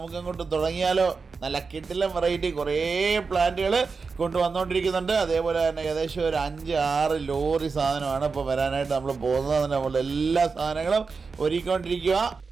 തുടങ്ങിയാലോ. നല്ല കിടിലൻ വെറൈറ്റി കുറേ പ്ലാന്റുകൾ കൊണ്ടുവന്നുകൊണ്ടിരിക്കുന്നുണ്ട്. അതേപോലെ തന്നെ ഏകദേശം ഒരു 5-6 ലോറി സാധനമാണ് ഇപ്പോൾ വരാനായിട്ട് നമ്മൾ പോകുന്നത്. നമ്മൾ എല്ലാ സാധനങ്ങളും ഒരുക്കിക്കൊണ്ടിരിക്കുക.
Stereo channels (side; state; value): left; quieter; 4.8 dB